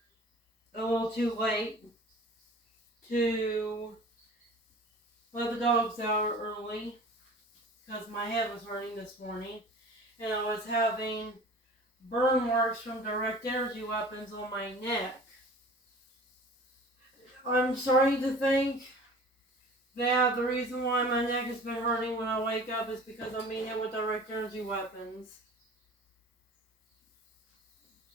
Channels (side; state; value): both; normal; correlation 0.43